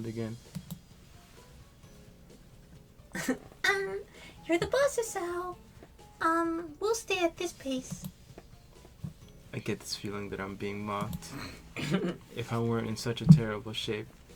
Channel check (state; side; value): identical; both; correlation 1.00